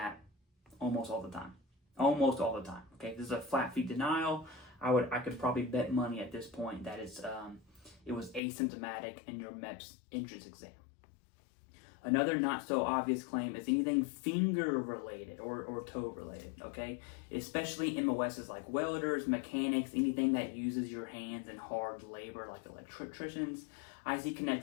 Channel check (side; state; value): right; drops out; at 8.4 s